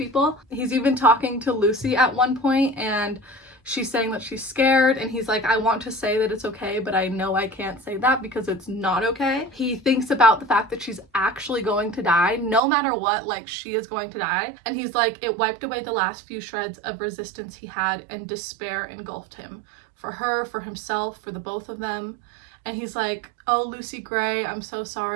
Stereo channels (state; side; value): drops out; left; at 12.6 s